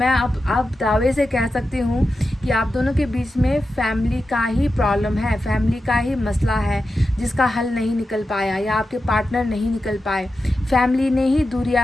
अब दावे से कह सकती हूँ कि आप दोनों के बीच में फैमिली का ही प्रॉब्लम है, फैमिली का ही मसला है जिसका हल नहीं निकल पाया या आपके पार्टनर नहीं निकल पाए। फैमिली ने ही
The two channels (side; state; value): both; normal; correlation 0.91